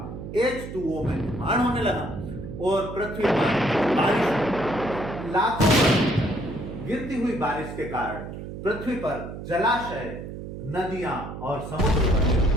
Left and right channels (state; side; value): noise; right; hum, 9 dB below the sound